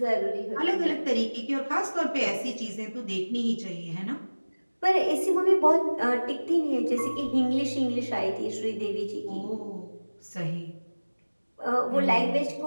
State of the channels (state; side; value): inverted; both; correlation -1.00